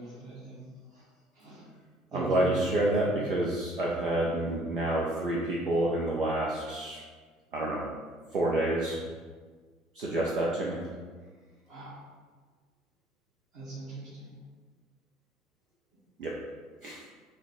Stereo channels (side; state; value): both; normal; correlation 0.60